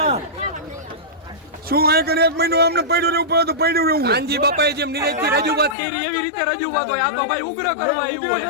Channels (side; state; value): right; drops out; at 5.8 s